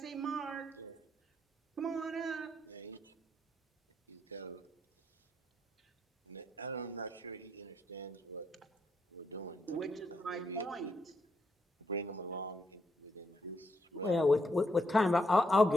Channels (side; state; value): both; normal; correlation 0.78